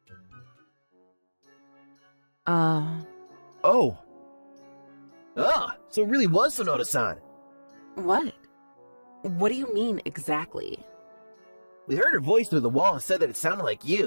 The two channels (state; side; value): inverted; both; correlation -1.00